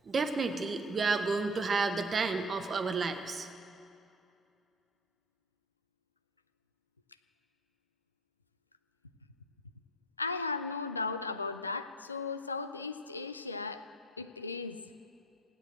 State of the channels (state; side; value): normal; both; correlation 0.40